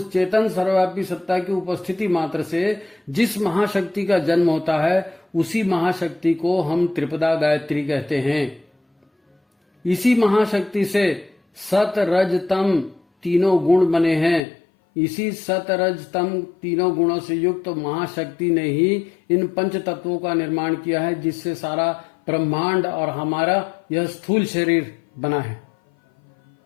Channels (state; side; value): drops out; right; at 14.4 s